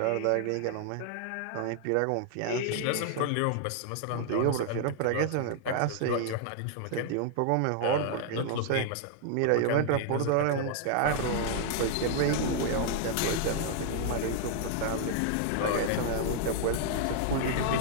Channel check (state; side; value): different; both; correlation 0.00